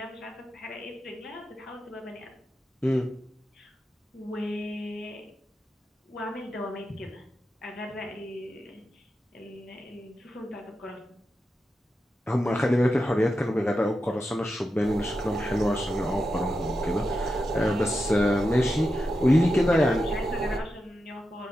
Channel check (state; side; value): normal; both; correlation 0.89